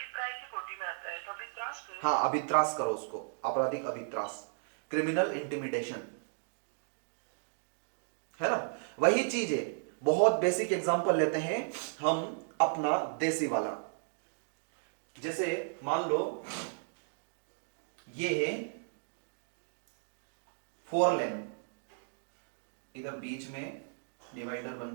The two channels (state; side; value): silent; left; digital silence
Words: हाँ, अभित्रास करो उसको, आपराधिक अभित्रास, क्रिमिनल इंटिमिडेशन, है ना, वही चीज है। बहुत बेसिक एग्जांपल लेते हैं हम अपना देसी वाला। जैसे मान लो ये है 4 लेन, इधर बीच में डिवाइडर